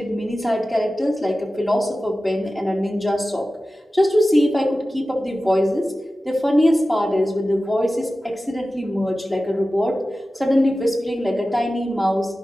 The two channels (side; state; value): both; normal; correlation 0.95